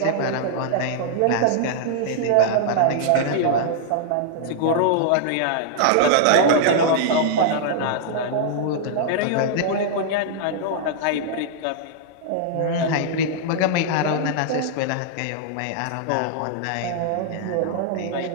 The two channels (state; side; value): different; both; correlation -0.01